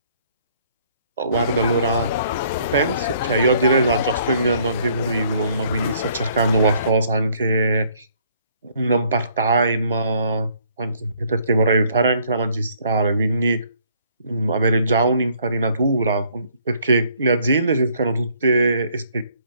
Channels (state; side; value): inverted; both; correlation -0.63